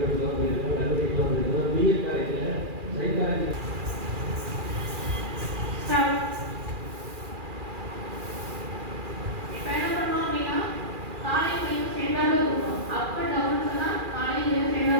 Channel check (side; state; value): left; late; 2.4 ms